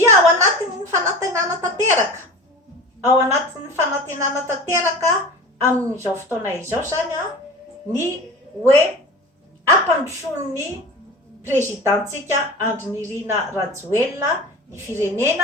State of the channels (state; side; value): normal; both; correlation 0.35